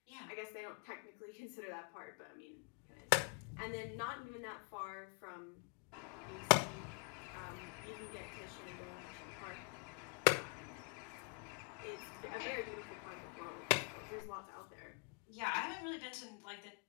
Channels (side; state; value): right; quieter; 37.2 dB